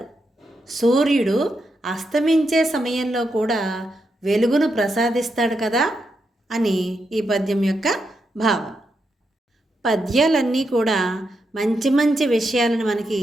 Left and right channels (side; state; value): both; normal; correlation 0.84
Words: సూర్యుడు అస్తమించే సమయంలో కూడా వెలుగును ప్రసాదిస్తాడు కదా అని ఈ పద్యం యొక్క భావం. పద్యాలన్నీ కూడా మంచి మంచి విషయాలను మనకి